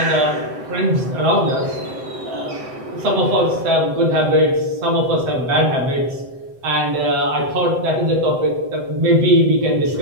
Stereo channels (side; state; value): left; late; 7.8 ms